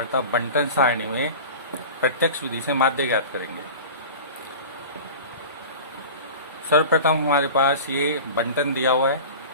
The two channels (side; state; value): both; inverted; correlation -0.35